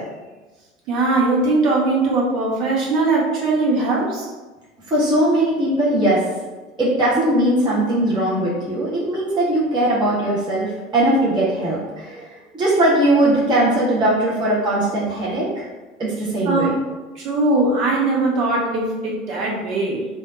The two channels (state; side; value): normal; both; correlation 0.31